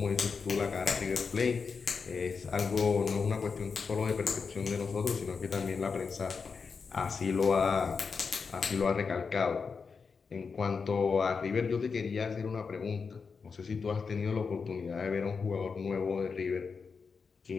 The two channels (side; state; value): right; quieter; 5.3 dB